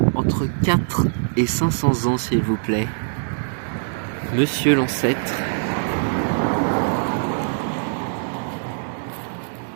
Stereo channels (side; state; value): left; silent; digital silence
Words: entre 4 et 500 ans, s'il vous plaît. Monsieur l'ancêtre.